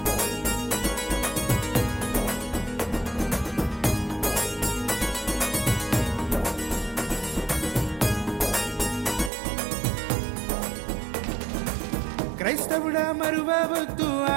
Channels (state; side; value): drops out; left; at 9.3 s